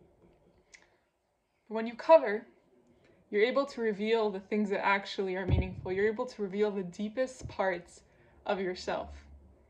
But when you cover, you're able to reveal the things that actually are meaningful. You're able to reveal the deepest parts of yourself.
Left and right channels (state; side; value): identical; both; correlation 1.00